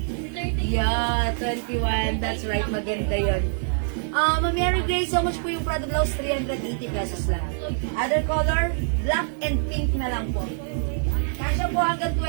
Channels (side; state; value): left; silent; 62 dB below the other